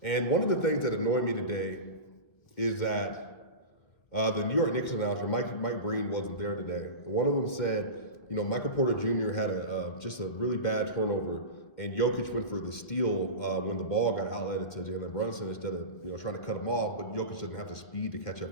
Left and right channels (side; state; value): right; late; 1.9 ms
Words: And one of the things that annoyed me today is that the New York Knicks announcer, Mike Breen, wasn't there today. One of them said, Michael Porter Jr. had just a really bad turnover, and Jokic went for the steal when the ball got outletted to Jalen Brunson instead of trying to cut him off. But Jokic doesn't have the speed to catch